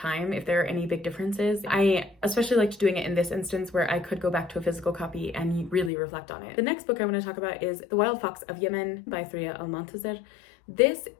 if there are any big differences. I especially liked doing it in this instance where I could go back to a physical copy and really reflect on it. The next book I want to talk about is The Wild Fox of Yemen by Threa Almontaser. This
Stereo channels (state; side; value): drops out; right; at 5.9 s